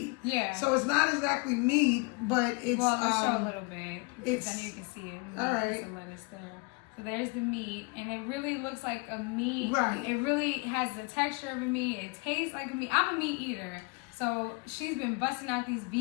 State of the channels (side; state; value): right; quieter; 29.0 dB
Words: Yeah. So it's not exactly meat, but it's let's show a little bit. It's, then you can see it. All right. Some lettuce there. So there's the meat, and it really looks like a meat. Right. It really has the texture of a meat. It tastes like a meat. I'm a meat eater, so she's been busting out these